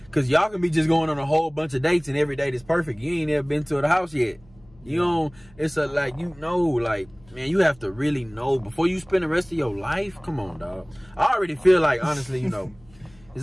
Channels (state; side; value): noise; left; hum, 27 dB below the sound